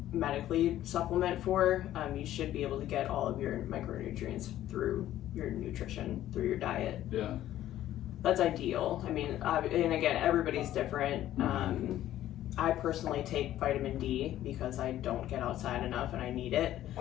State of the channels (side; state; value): right; quieter; 13.1 dB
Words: medically supplement for, you should be able to get all of your micronutrients through your nutrition, through your diet. Yeah. That's ideal. I mean, and again, everybody's different. I personally take vitamin D because I don't get outside enough and I need it.